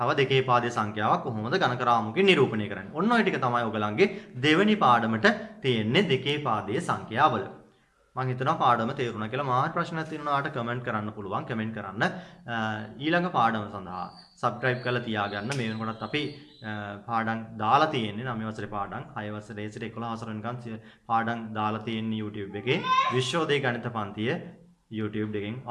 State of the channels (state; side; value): identical; both; correlation 1.00